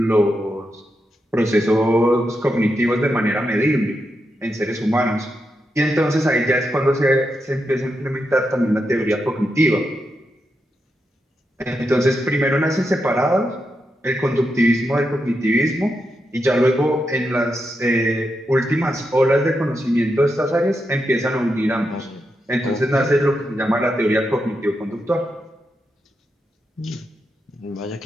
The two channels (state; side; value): normal; both; correlation 0.85